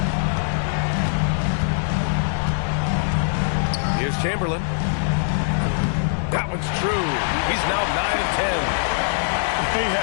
Here's Chamberlain. That one's true. He's now 9 of 10. They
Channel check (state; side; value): silent; right; digital silence